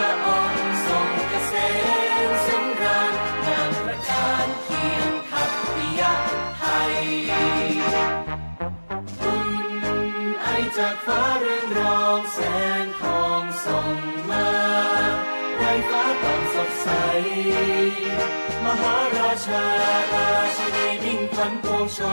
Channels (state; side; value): inverted; both; correlation -1.00